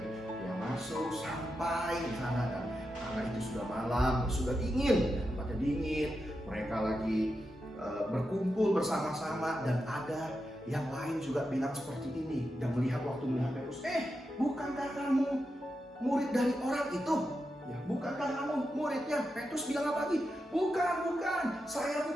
Dia masuk sampai di sana, dan karena itu sudah malam, sudah dingin, ya, tempatnya dingin. Mereka lagi berkumpul bersama-sama, dan ada yang lain juga bilang seperti ini. Dan melihat Petrus, bukankah kamu murid dari orang itu? Ya, bukankah kamu muridnya? Petrus bilang apa lagi? Bukan, saya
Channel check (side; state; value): both; normal; correlation 0.88